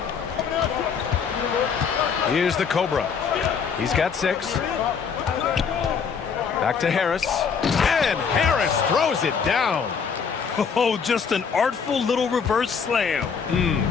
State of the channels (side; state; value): right; quieter; 6.3 dB